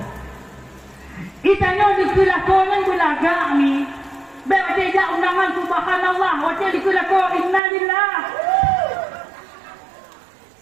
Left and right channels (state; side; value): drops out; left; at 7.6 s